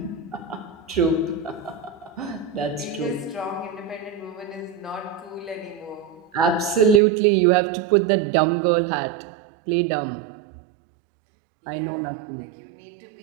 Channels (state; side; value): drops out; left; at 7.0 s